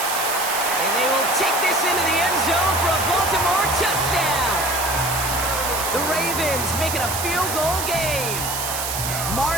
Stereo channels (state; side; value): noise; right; hiss, 3 dB below the sound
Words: And they will take this into the end zone for a Baltimore touchdown. The Ravens make it a field goal game.